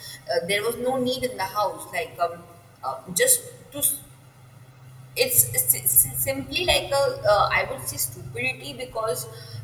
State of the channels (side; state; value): both; identical; correlation 1.00